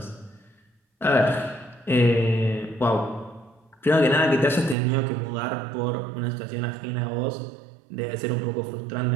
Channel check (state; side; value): drops out; left; at 4.8 s